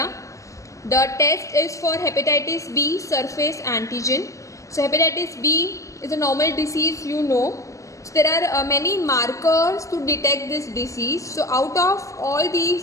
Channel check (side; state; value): right; late; 0.16 ms